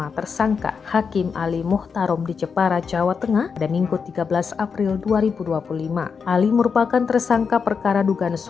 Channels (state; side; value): quieter; right; 5.8 dB